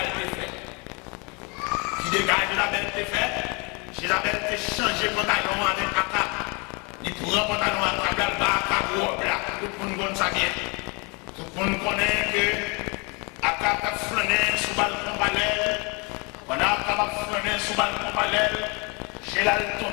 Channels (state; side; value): quieter; right; 30.4 dB